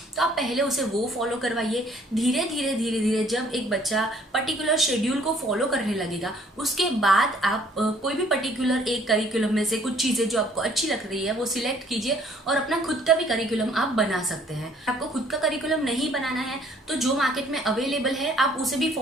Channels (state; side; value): normal; both; correlation 0.60